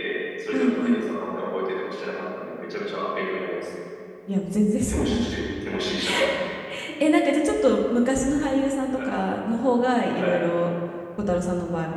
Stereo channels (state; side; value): identical; both; correlation 1.00